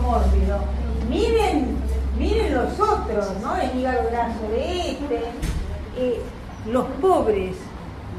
miren los otros, ¿no? El hígado graso de los pobres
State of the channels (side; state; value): both; identical; correlation 1.00